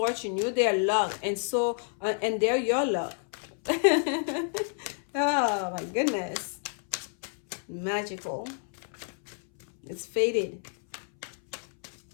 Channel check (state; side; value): silent; right; 58 dB below the other